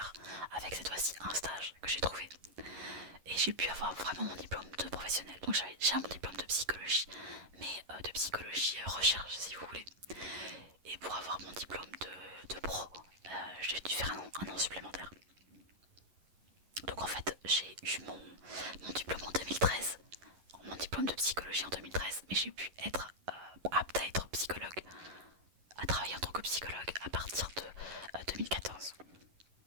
avec cette fois-ci un stage que j'ai trouvé. Et j'ai pu avoir vraiment mon diplôme de professionnel. Donc j'avais déjà mon diplôme de psychologie, mais de psychologie recherche si vous voulez. Et pour avoir mon diplôme de pro, j'ai dû faire un an supplémentaire. Donc en fait, j'ai eu mon diplôme en 2013, mon diplôme de psychologie en 2013, mais j'ai pu être apte à être psychologue, à travailler en tant que psychologue à partir de 2014.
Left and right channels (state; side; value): late; left; 11 ms